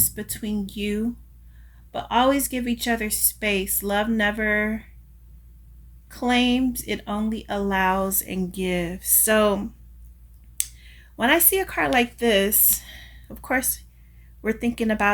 between you, but always give each other space. Love never claims, it only allows and gives. So when I see a card like this, of course, we're thinking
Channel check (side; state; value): both; identical; correlation 1.00